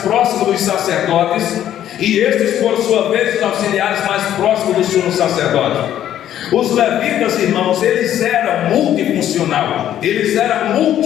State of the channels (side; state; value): right; quieter; 11.3 dB